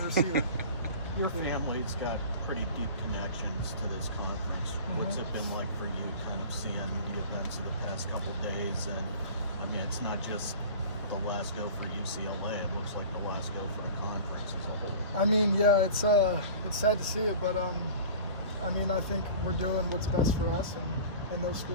receiver. Your family's got pretty deep connections to this conference. What's it been like for you kind of seeing the events of the past couple of days? And I mean, it's not just the last go for UCLA. It looks like the last go for the conference as a whole. I mean, yeah, it's sad to see it, but I mean, I think we're doing what's best for us, and those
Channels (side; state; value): both; inverted; correlation -0.40